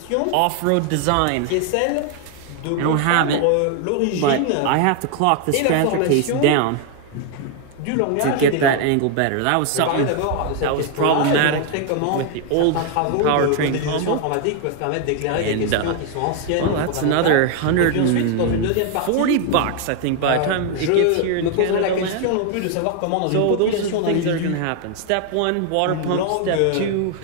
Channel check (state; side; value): different; both; correlation 0.00